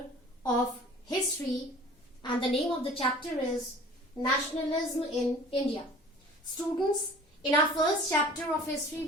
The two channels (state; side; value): normal; both; correlation 0.46